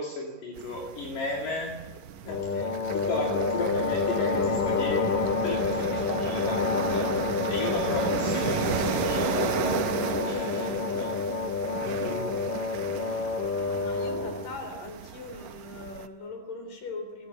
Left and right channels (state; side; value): late; right; 11 ms